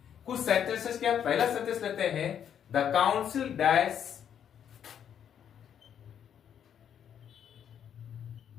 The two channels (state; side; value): quieter; right; 8.9 dB